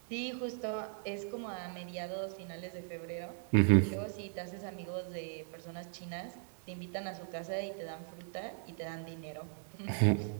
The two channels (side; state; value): left; silent; 52 dB below the other